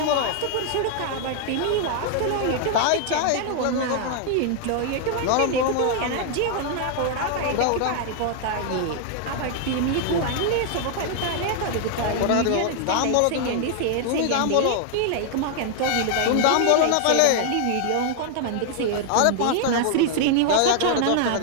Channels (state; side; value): different; both; correlation 0.00